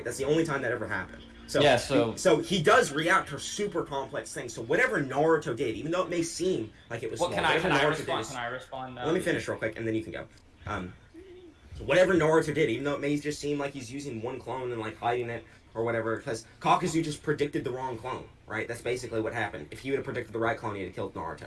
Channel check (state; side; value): identical; both; correlation 1.00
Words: That's the only time that ever happened. So, yeah, so he does react to super complex things. So whatever Naruto did, even though it may seem like it was well, small, can I Naruto respond? did, Can I respond now? let me finish real quick, and then you can go. So whatever Naruto did, even though it may just seem like he's using one clone and like hiding it or whatever, because Kakuzu just predicted the wrong clone, right? That's basically what happened. If he would have predicted the right clone, he'd have killed Naruto,